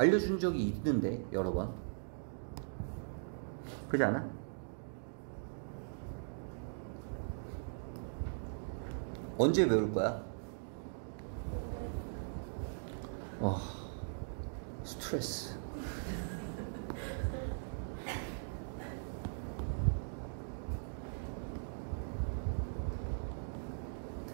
적이 있는데 여러 번. 그렇지 않아? 언제 외울 거야? 스트레스.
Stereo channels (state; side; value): silent; left; digital silence